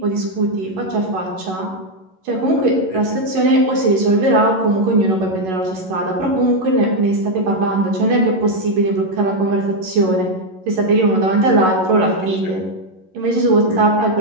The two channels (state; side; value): late; left; 11 ms